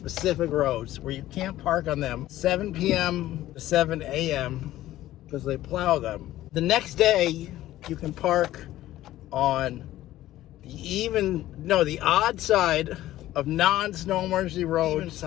roads where you can't park on them 7 p.m. to 7 a.m. because they plow them. The next day, you can park on the odd side of non-snow emergency road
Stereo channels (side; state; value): right; quieter; 14.6 dB